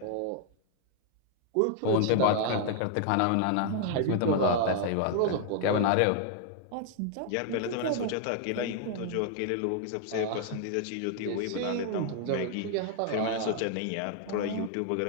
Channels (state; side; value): different; both; correlation 0.00